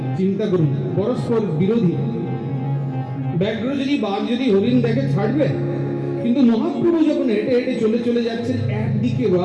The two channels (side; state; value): both; identical; correlation 1.00